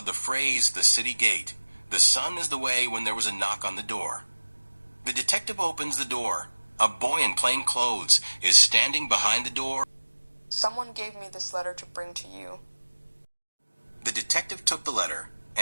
the phrase "the city gate. The sun is the way" when there was a knock on the door. The detective opens the door. A boy in plain clothes is standing behind the door. Someone gave me this letter to bring to you. The detective took the letter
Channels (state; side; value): inverted; both; correlation -1.00